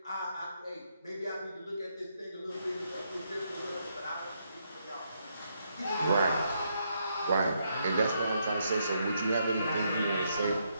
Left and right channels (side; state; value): both; inverted; correlation -0.77